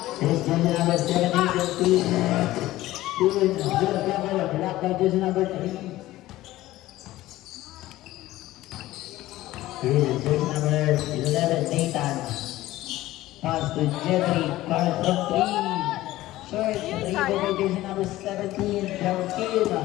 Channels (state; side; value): quieter; right; 16.2 dB